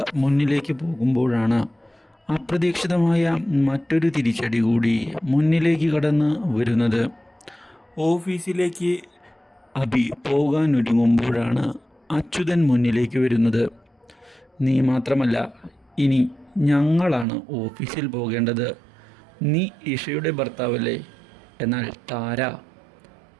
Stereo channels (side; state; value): left; drops out; at 17.2 s